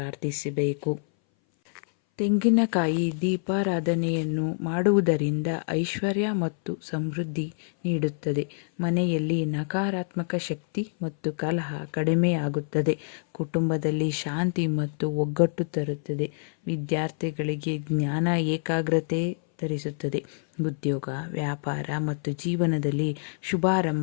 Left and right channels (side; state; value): right; silent; 59 dB below the other